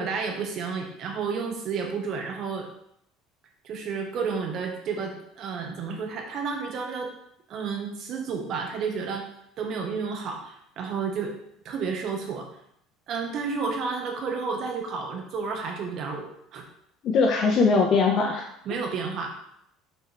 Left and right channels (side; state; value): both; normal; correlation 0.49